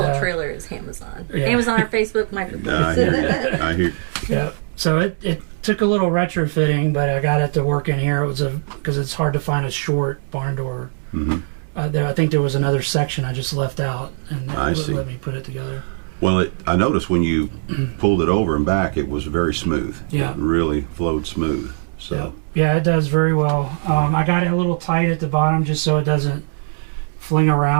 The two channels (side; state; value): left; silent; digital silence